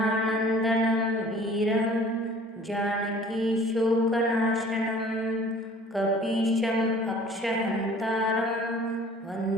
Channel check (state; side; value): normal; both; correlation 0.49